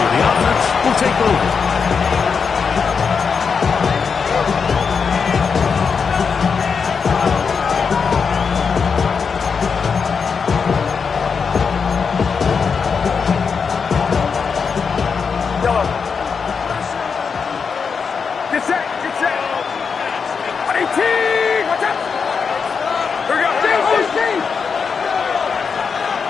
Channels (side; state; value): right; quieter; 5.8 dB